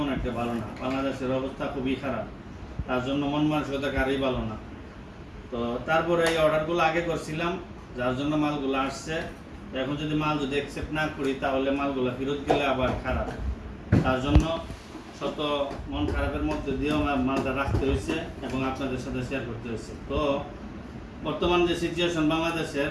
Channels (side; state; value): both; identical; correlation 1.00